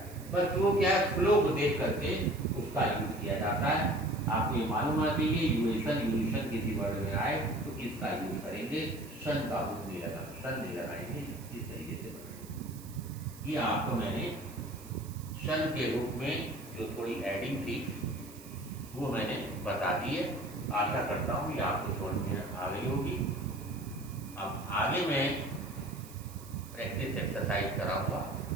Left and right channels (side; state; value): right; noise; hiss, 19 dB below the sound